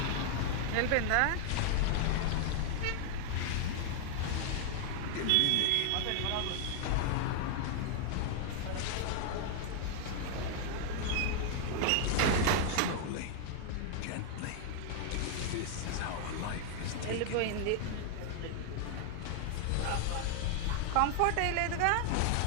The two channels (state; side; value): different; both; correlation 0.00